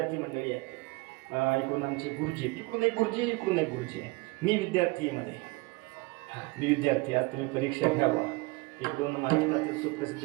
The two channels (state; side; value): quieter; left; 24.3 dB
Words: मंडळी आहेत. इकडून आमचे गुरुजी, इकडून एक गुरुजी, इकडून एक गुरुजी आहे. मी विद्यार्थी आहे मध्ये, मी विद्यार्थी. आज तुम्ही परीक्षा घ्यावा. इकडून महाराष्ट्रातील सुप्रसिद्ध